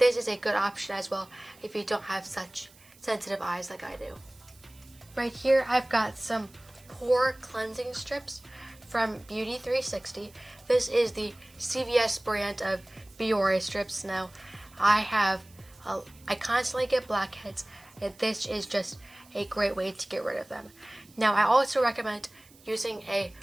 is a good option as well if you don't have such sensitive eyes like I do. Right here I've got some pore cleansing strips from Beauty 360. This is the CVS brand of Biore strips. Now I constantly get blackheads, and this is just a great way to get rid of them. Now I also recommend using a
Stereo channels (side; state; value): right; noise; hiss, 26 dB below the sound